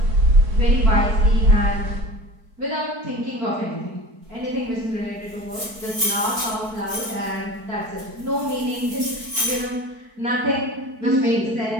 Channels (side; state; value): left; late; 4.5 ms